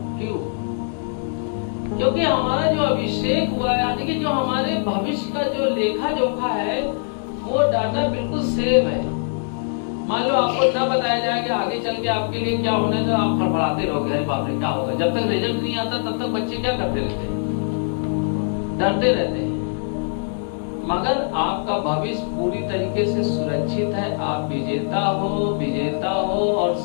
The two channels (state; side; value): silent; right; 64 dB below the other